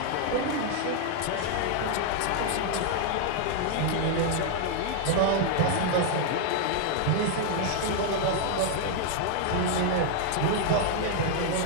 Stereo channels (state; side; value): different; both; correlation 0.00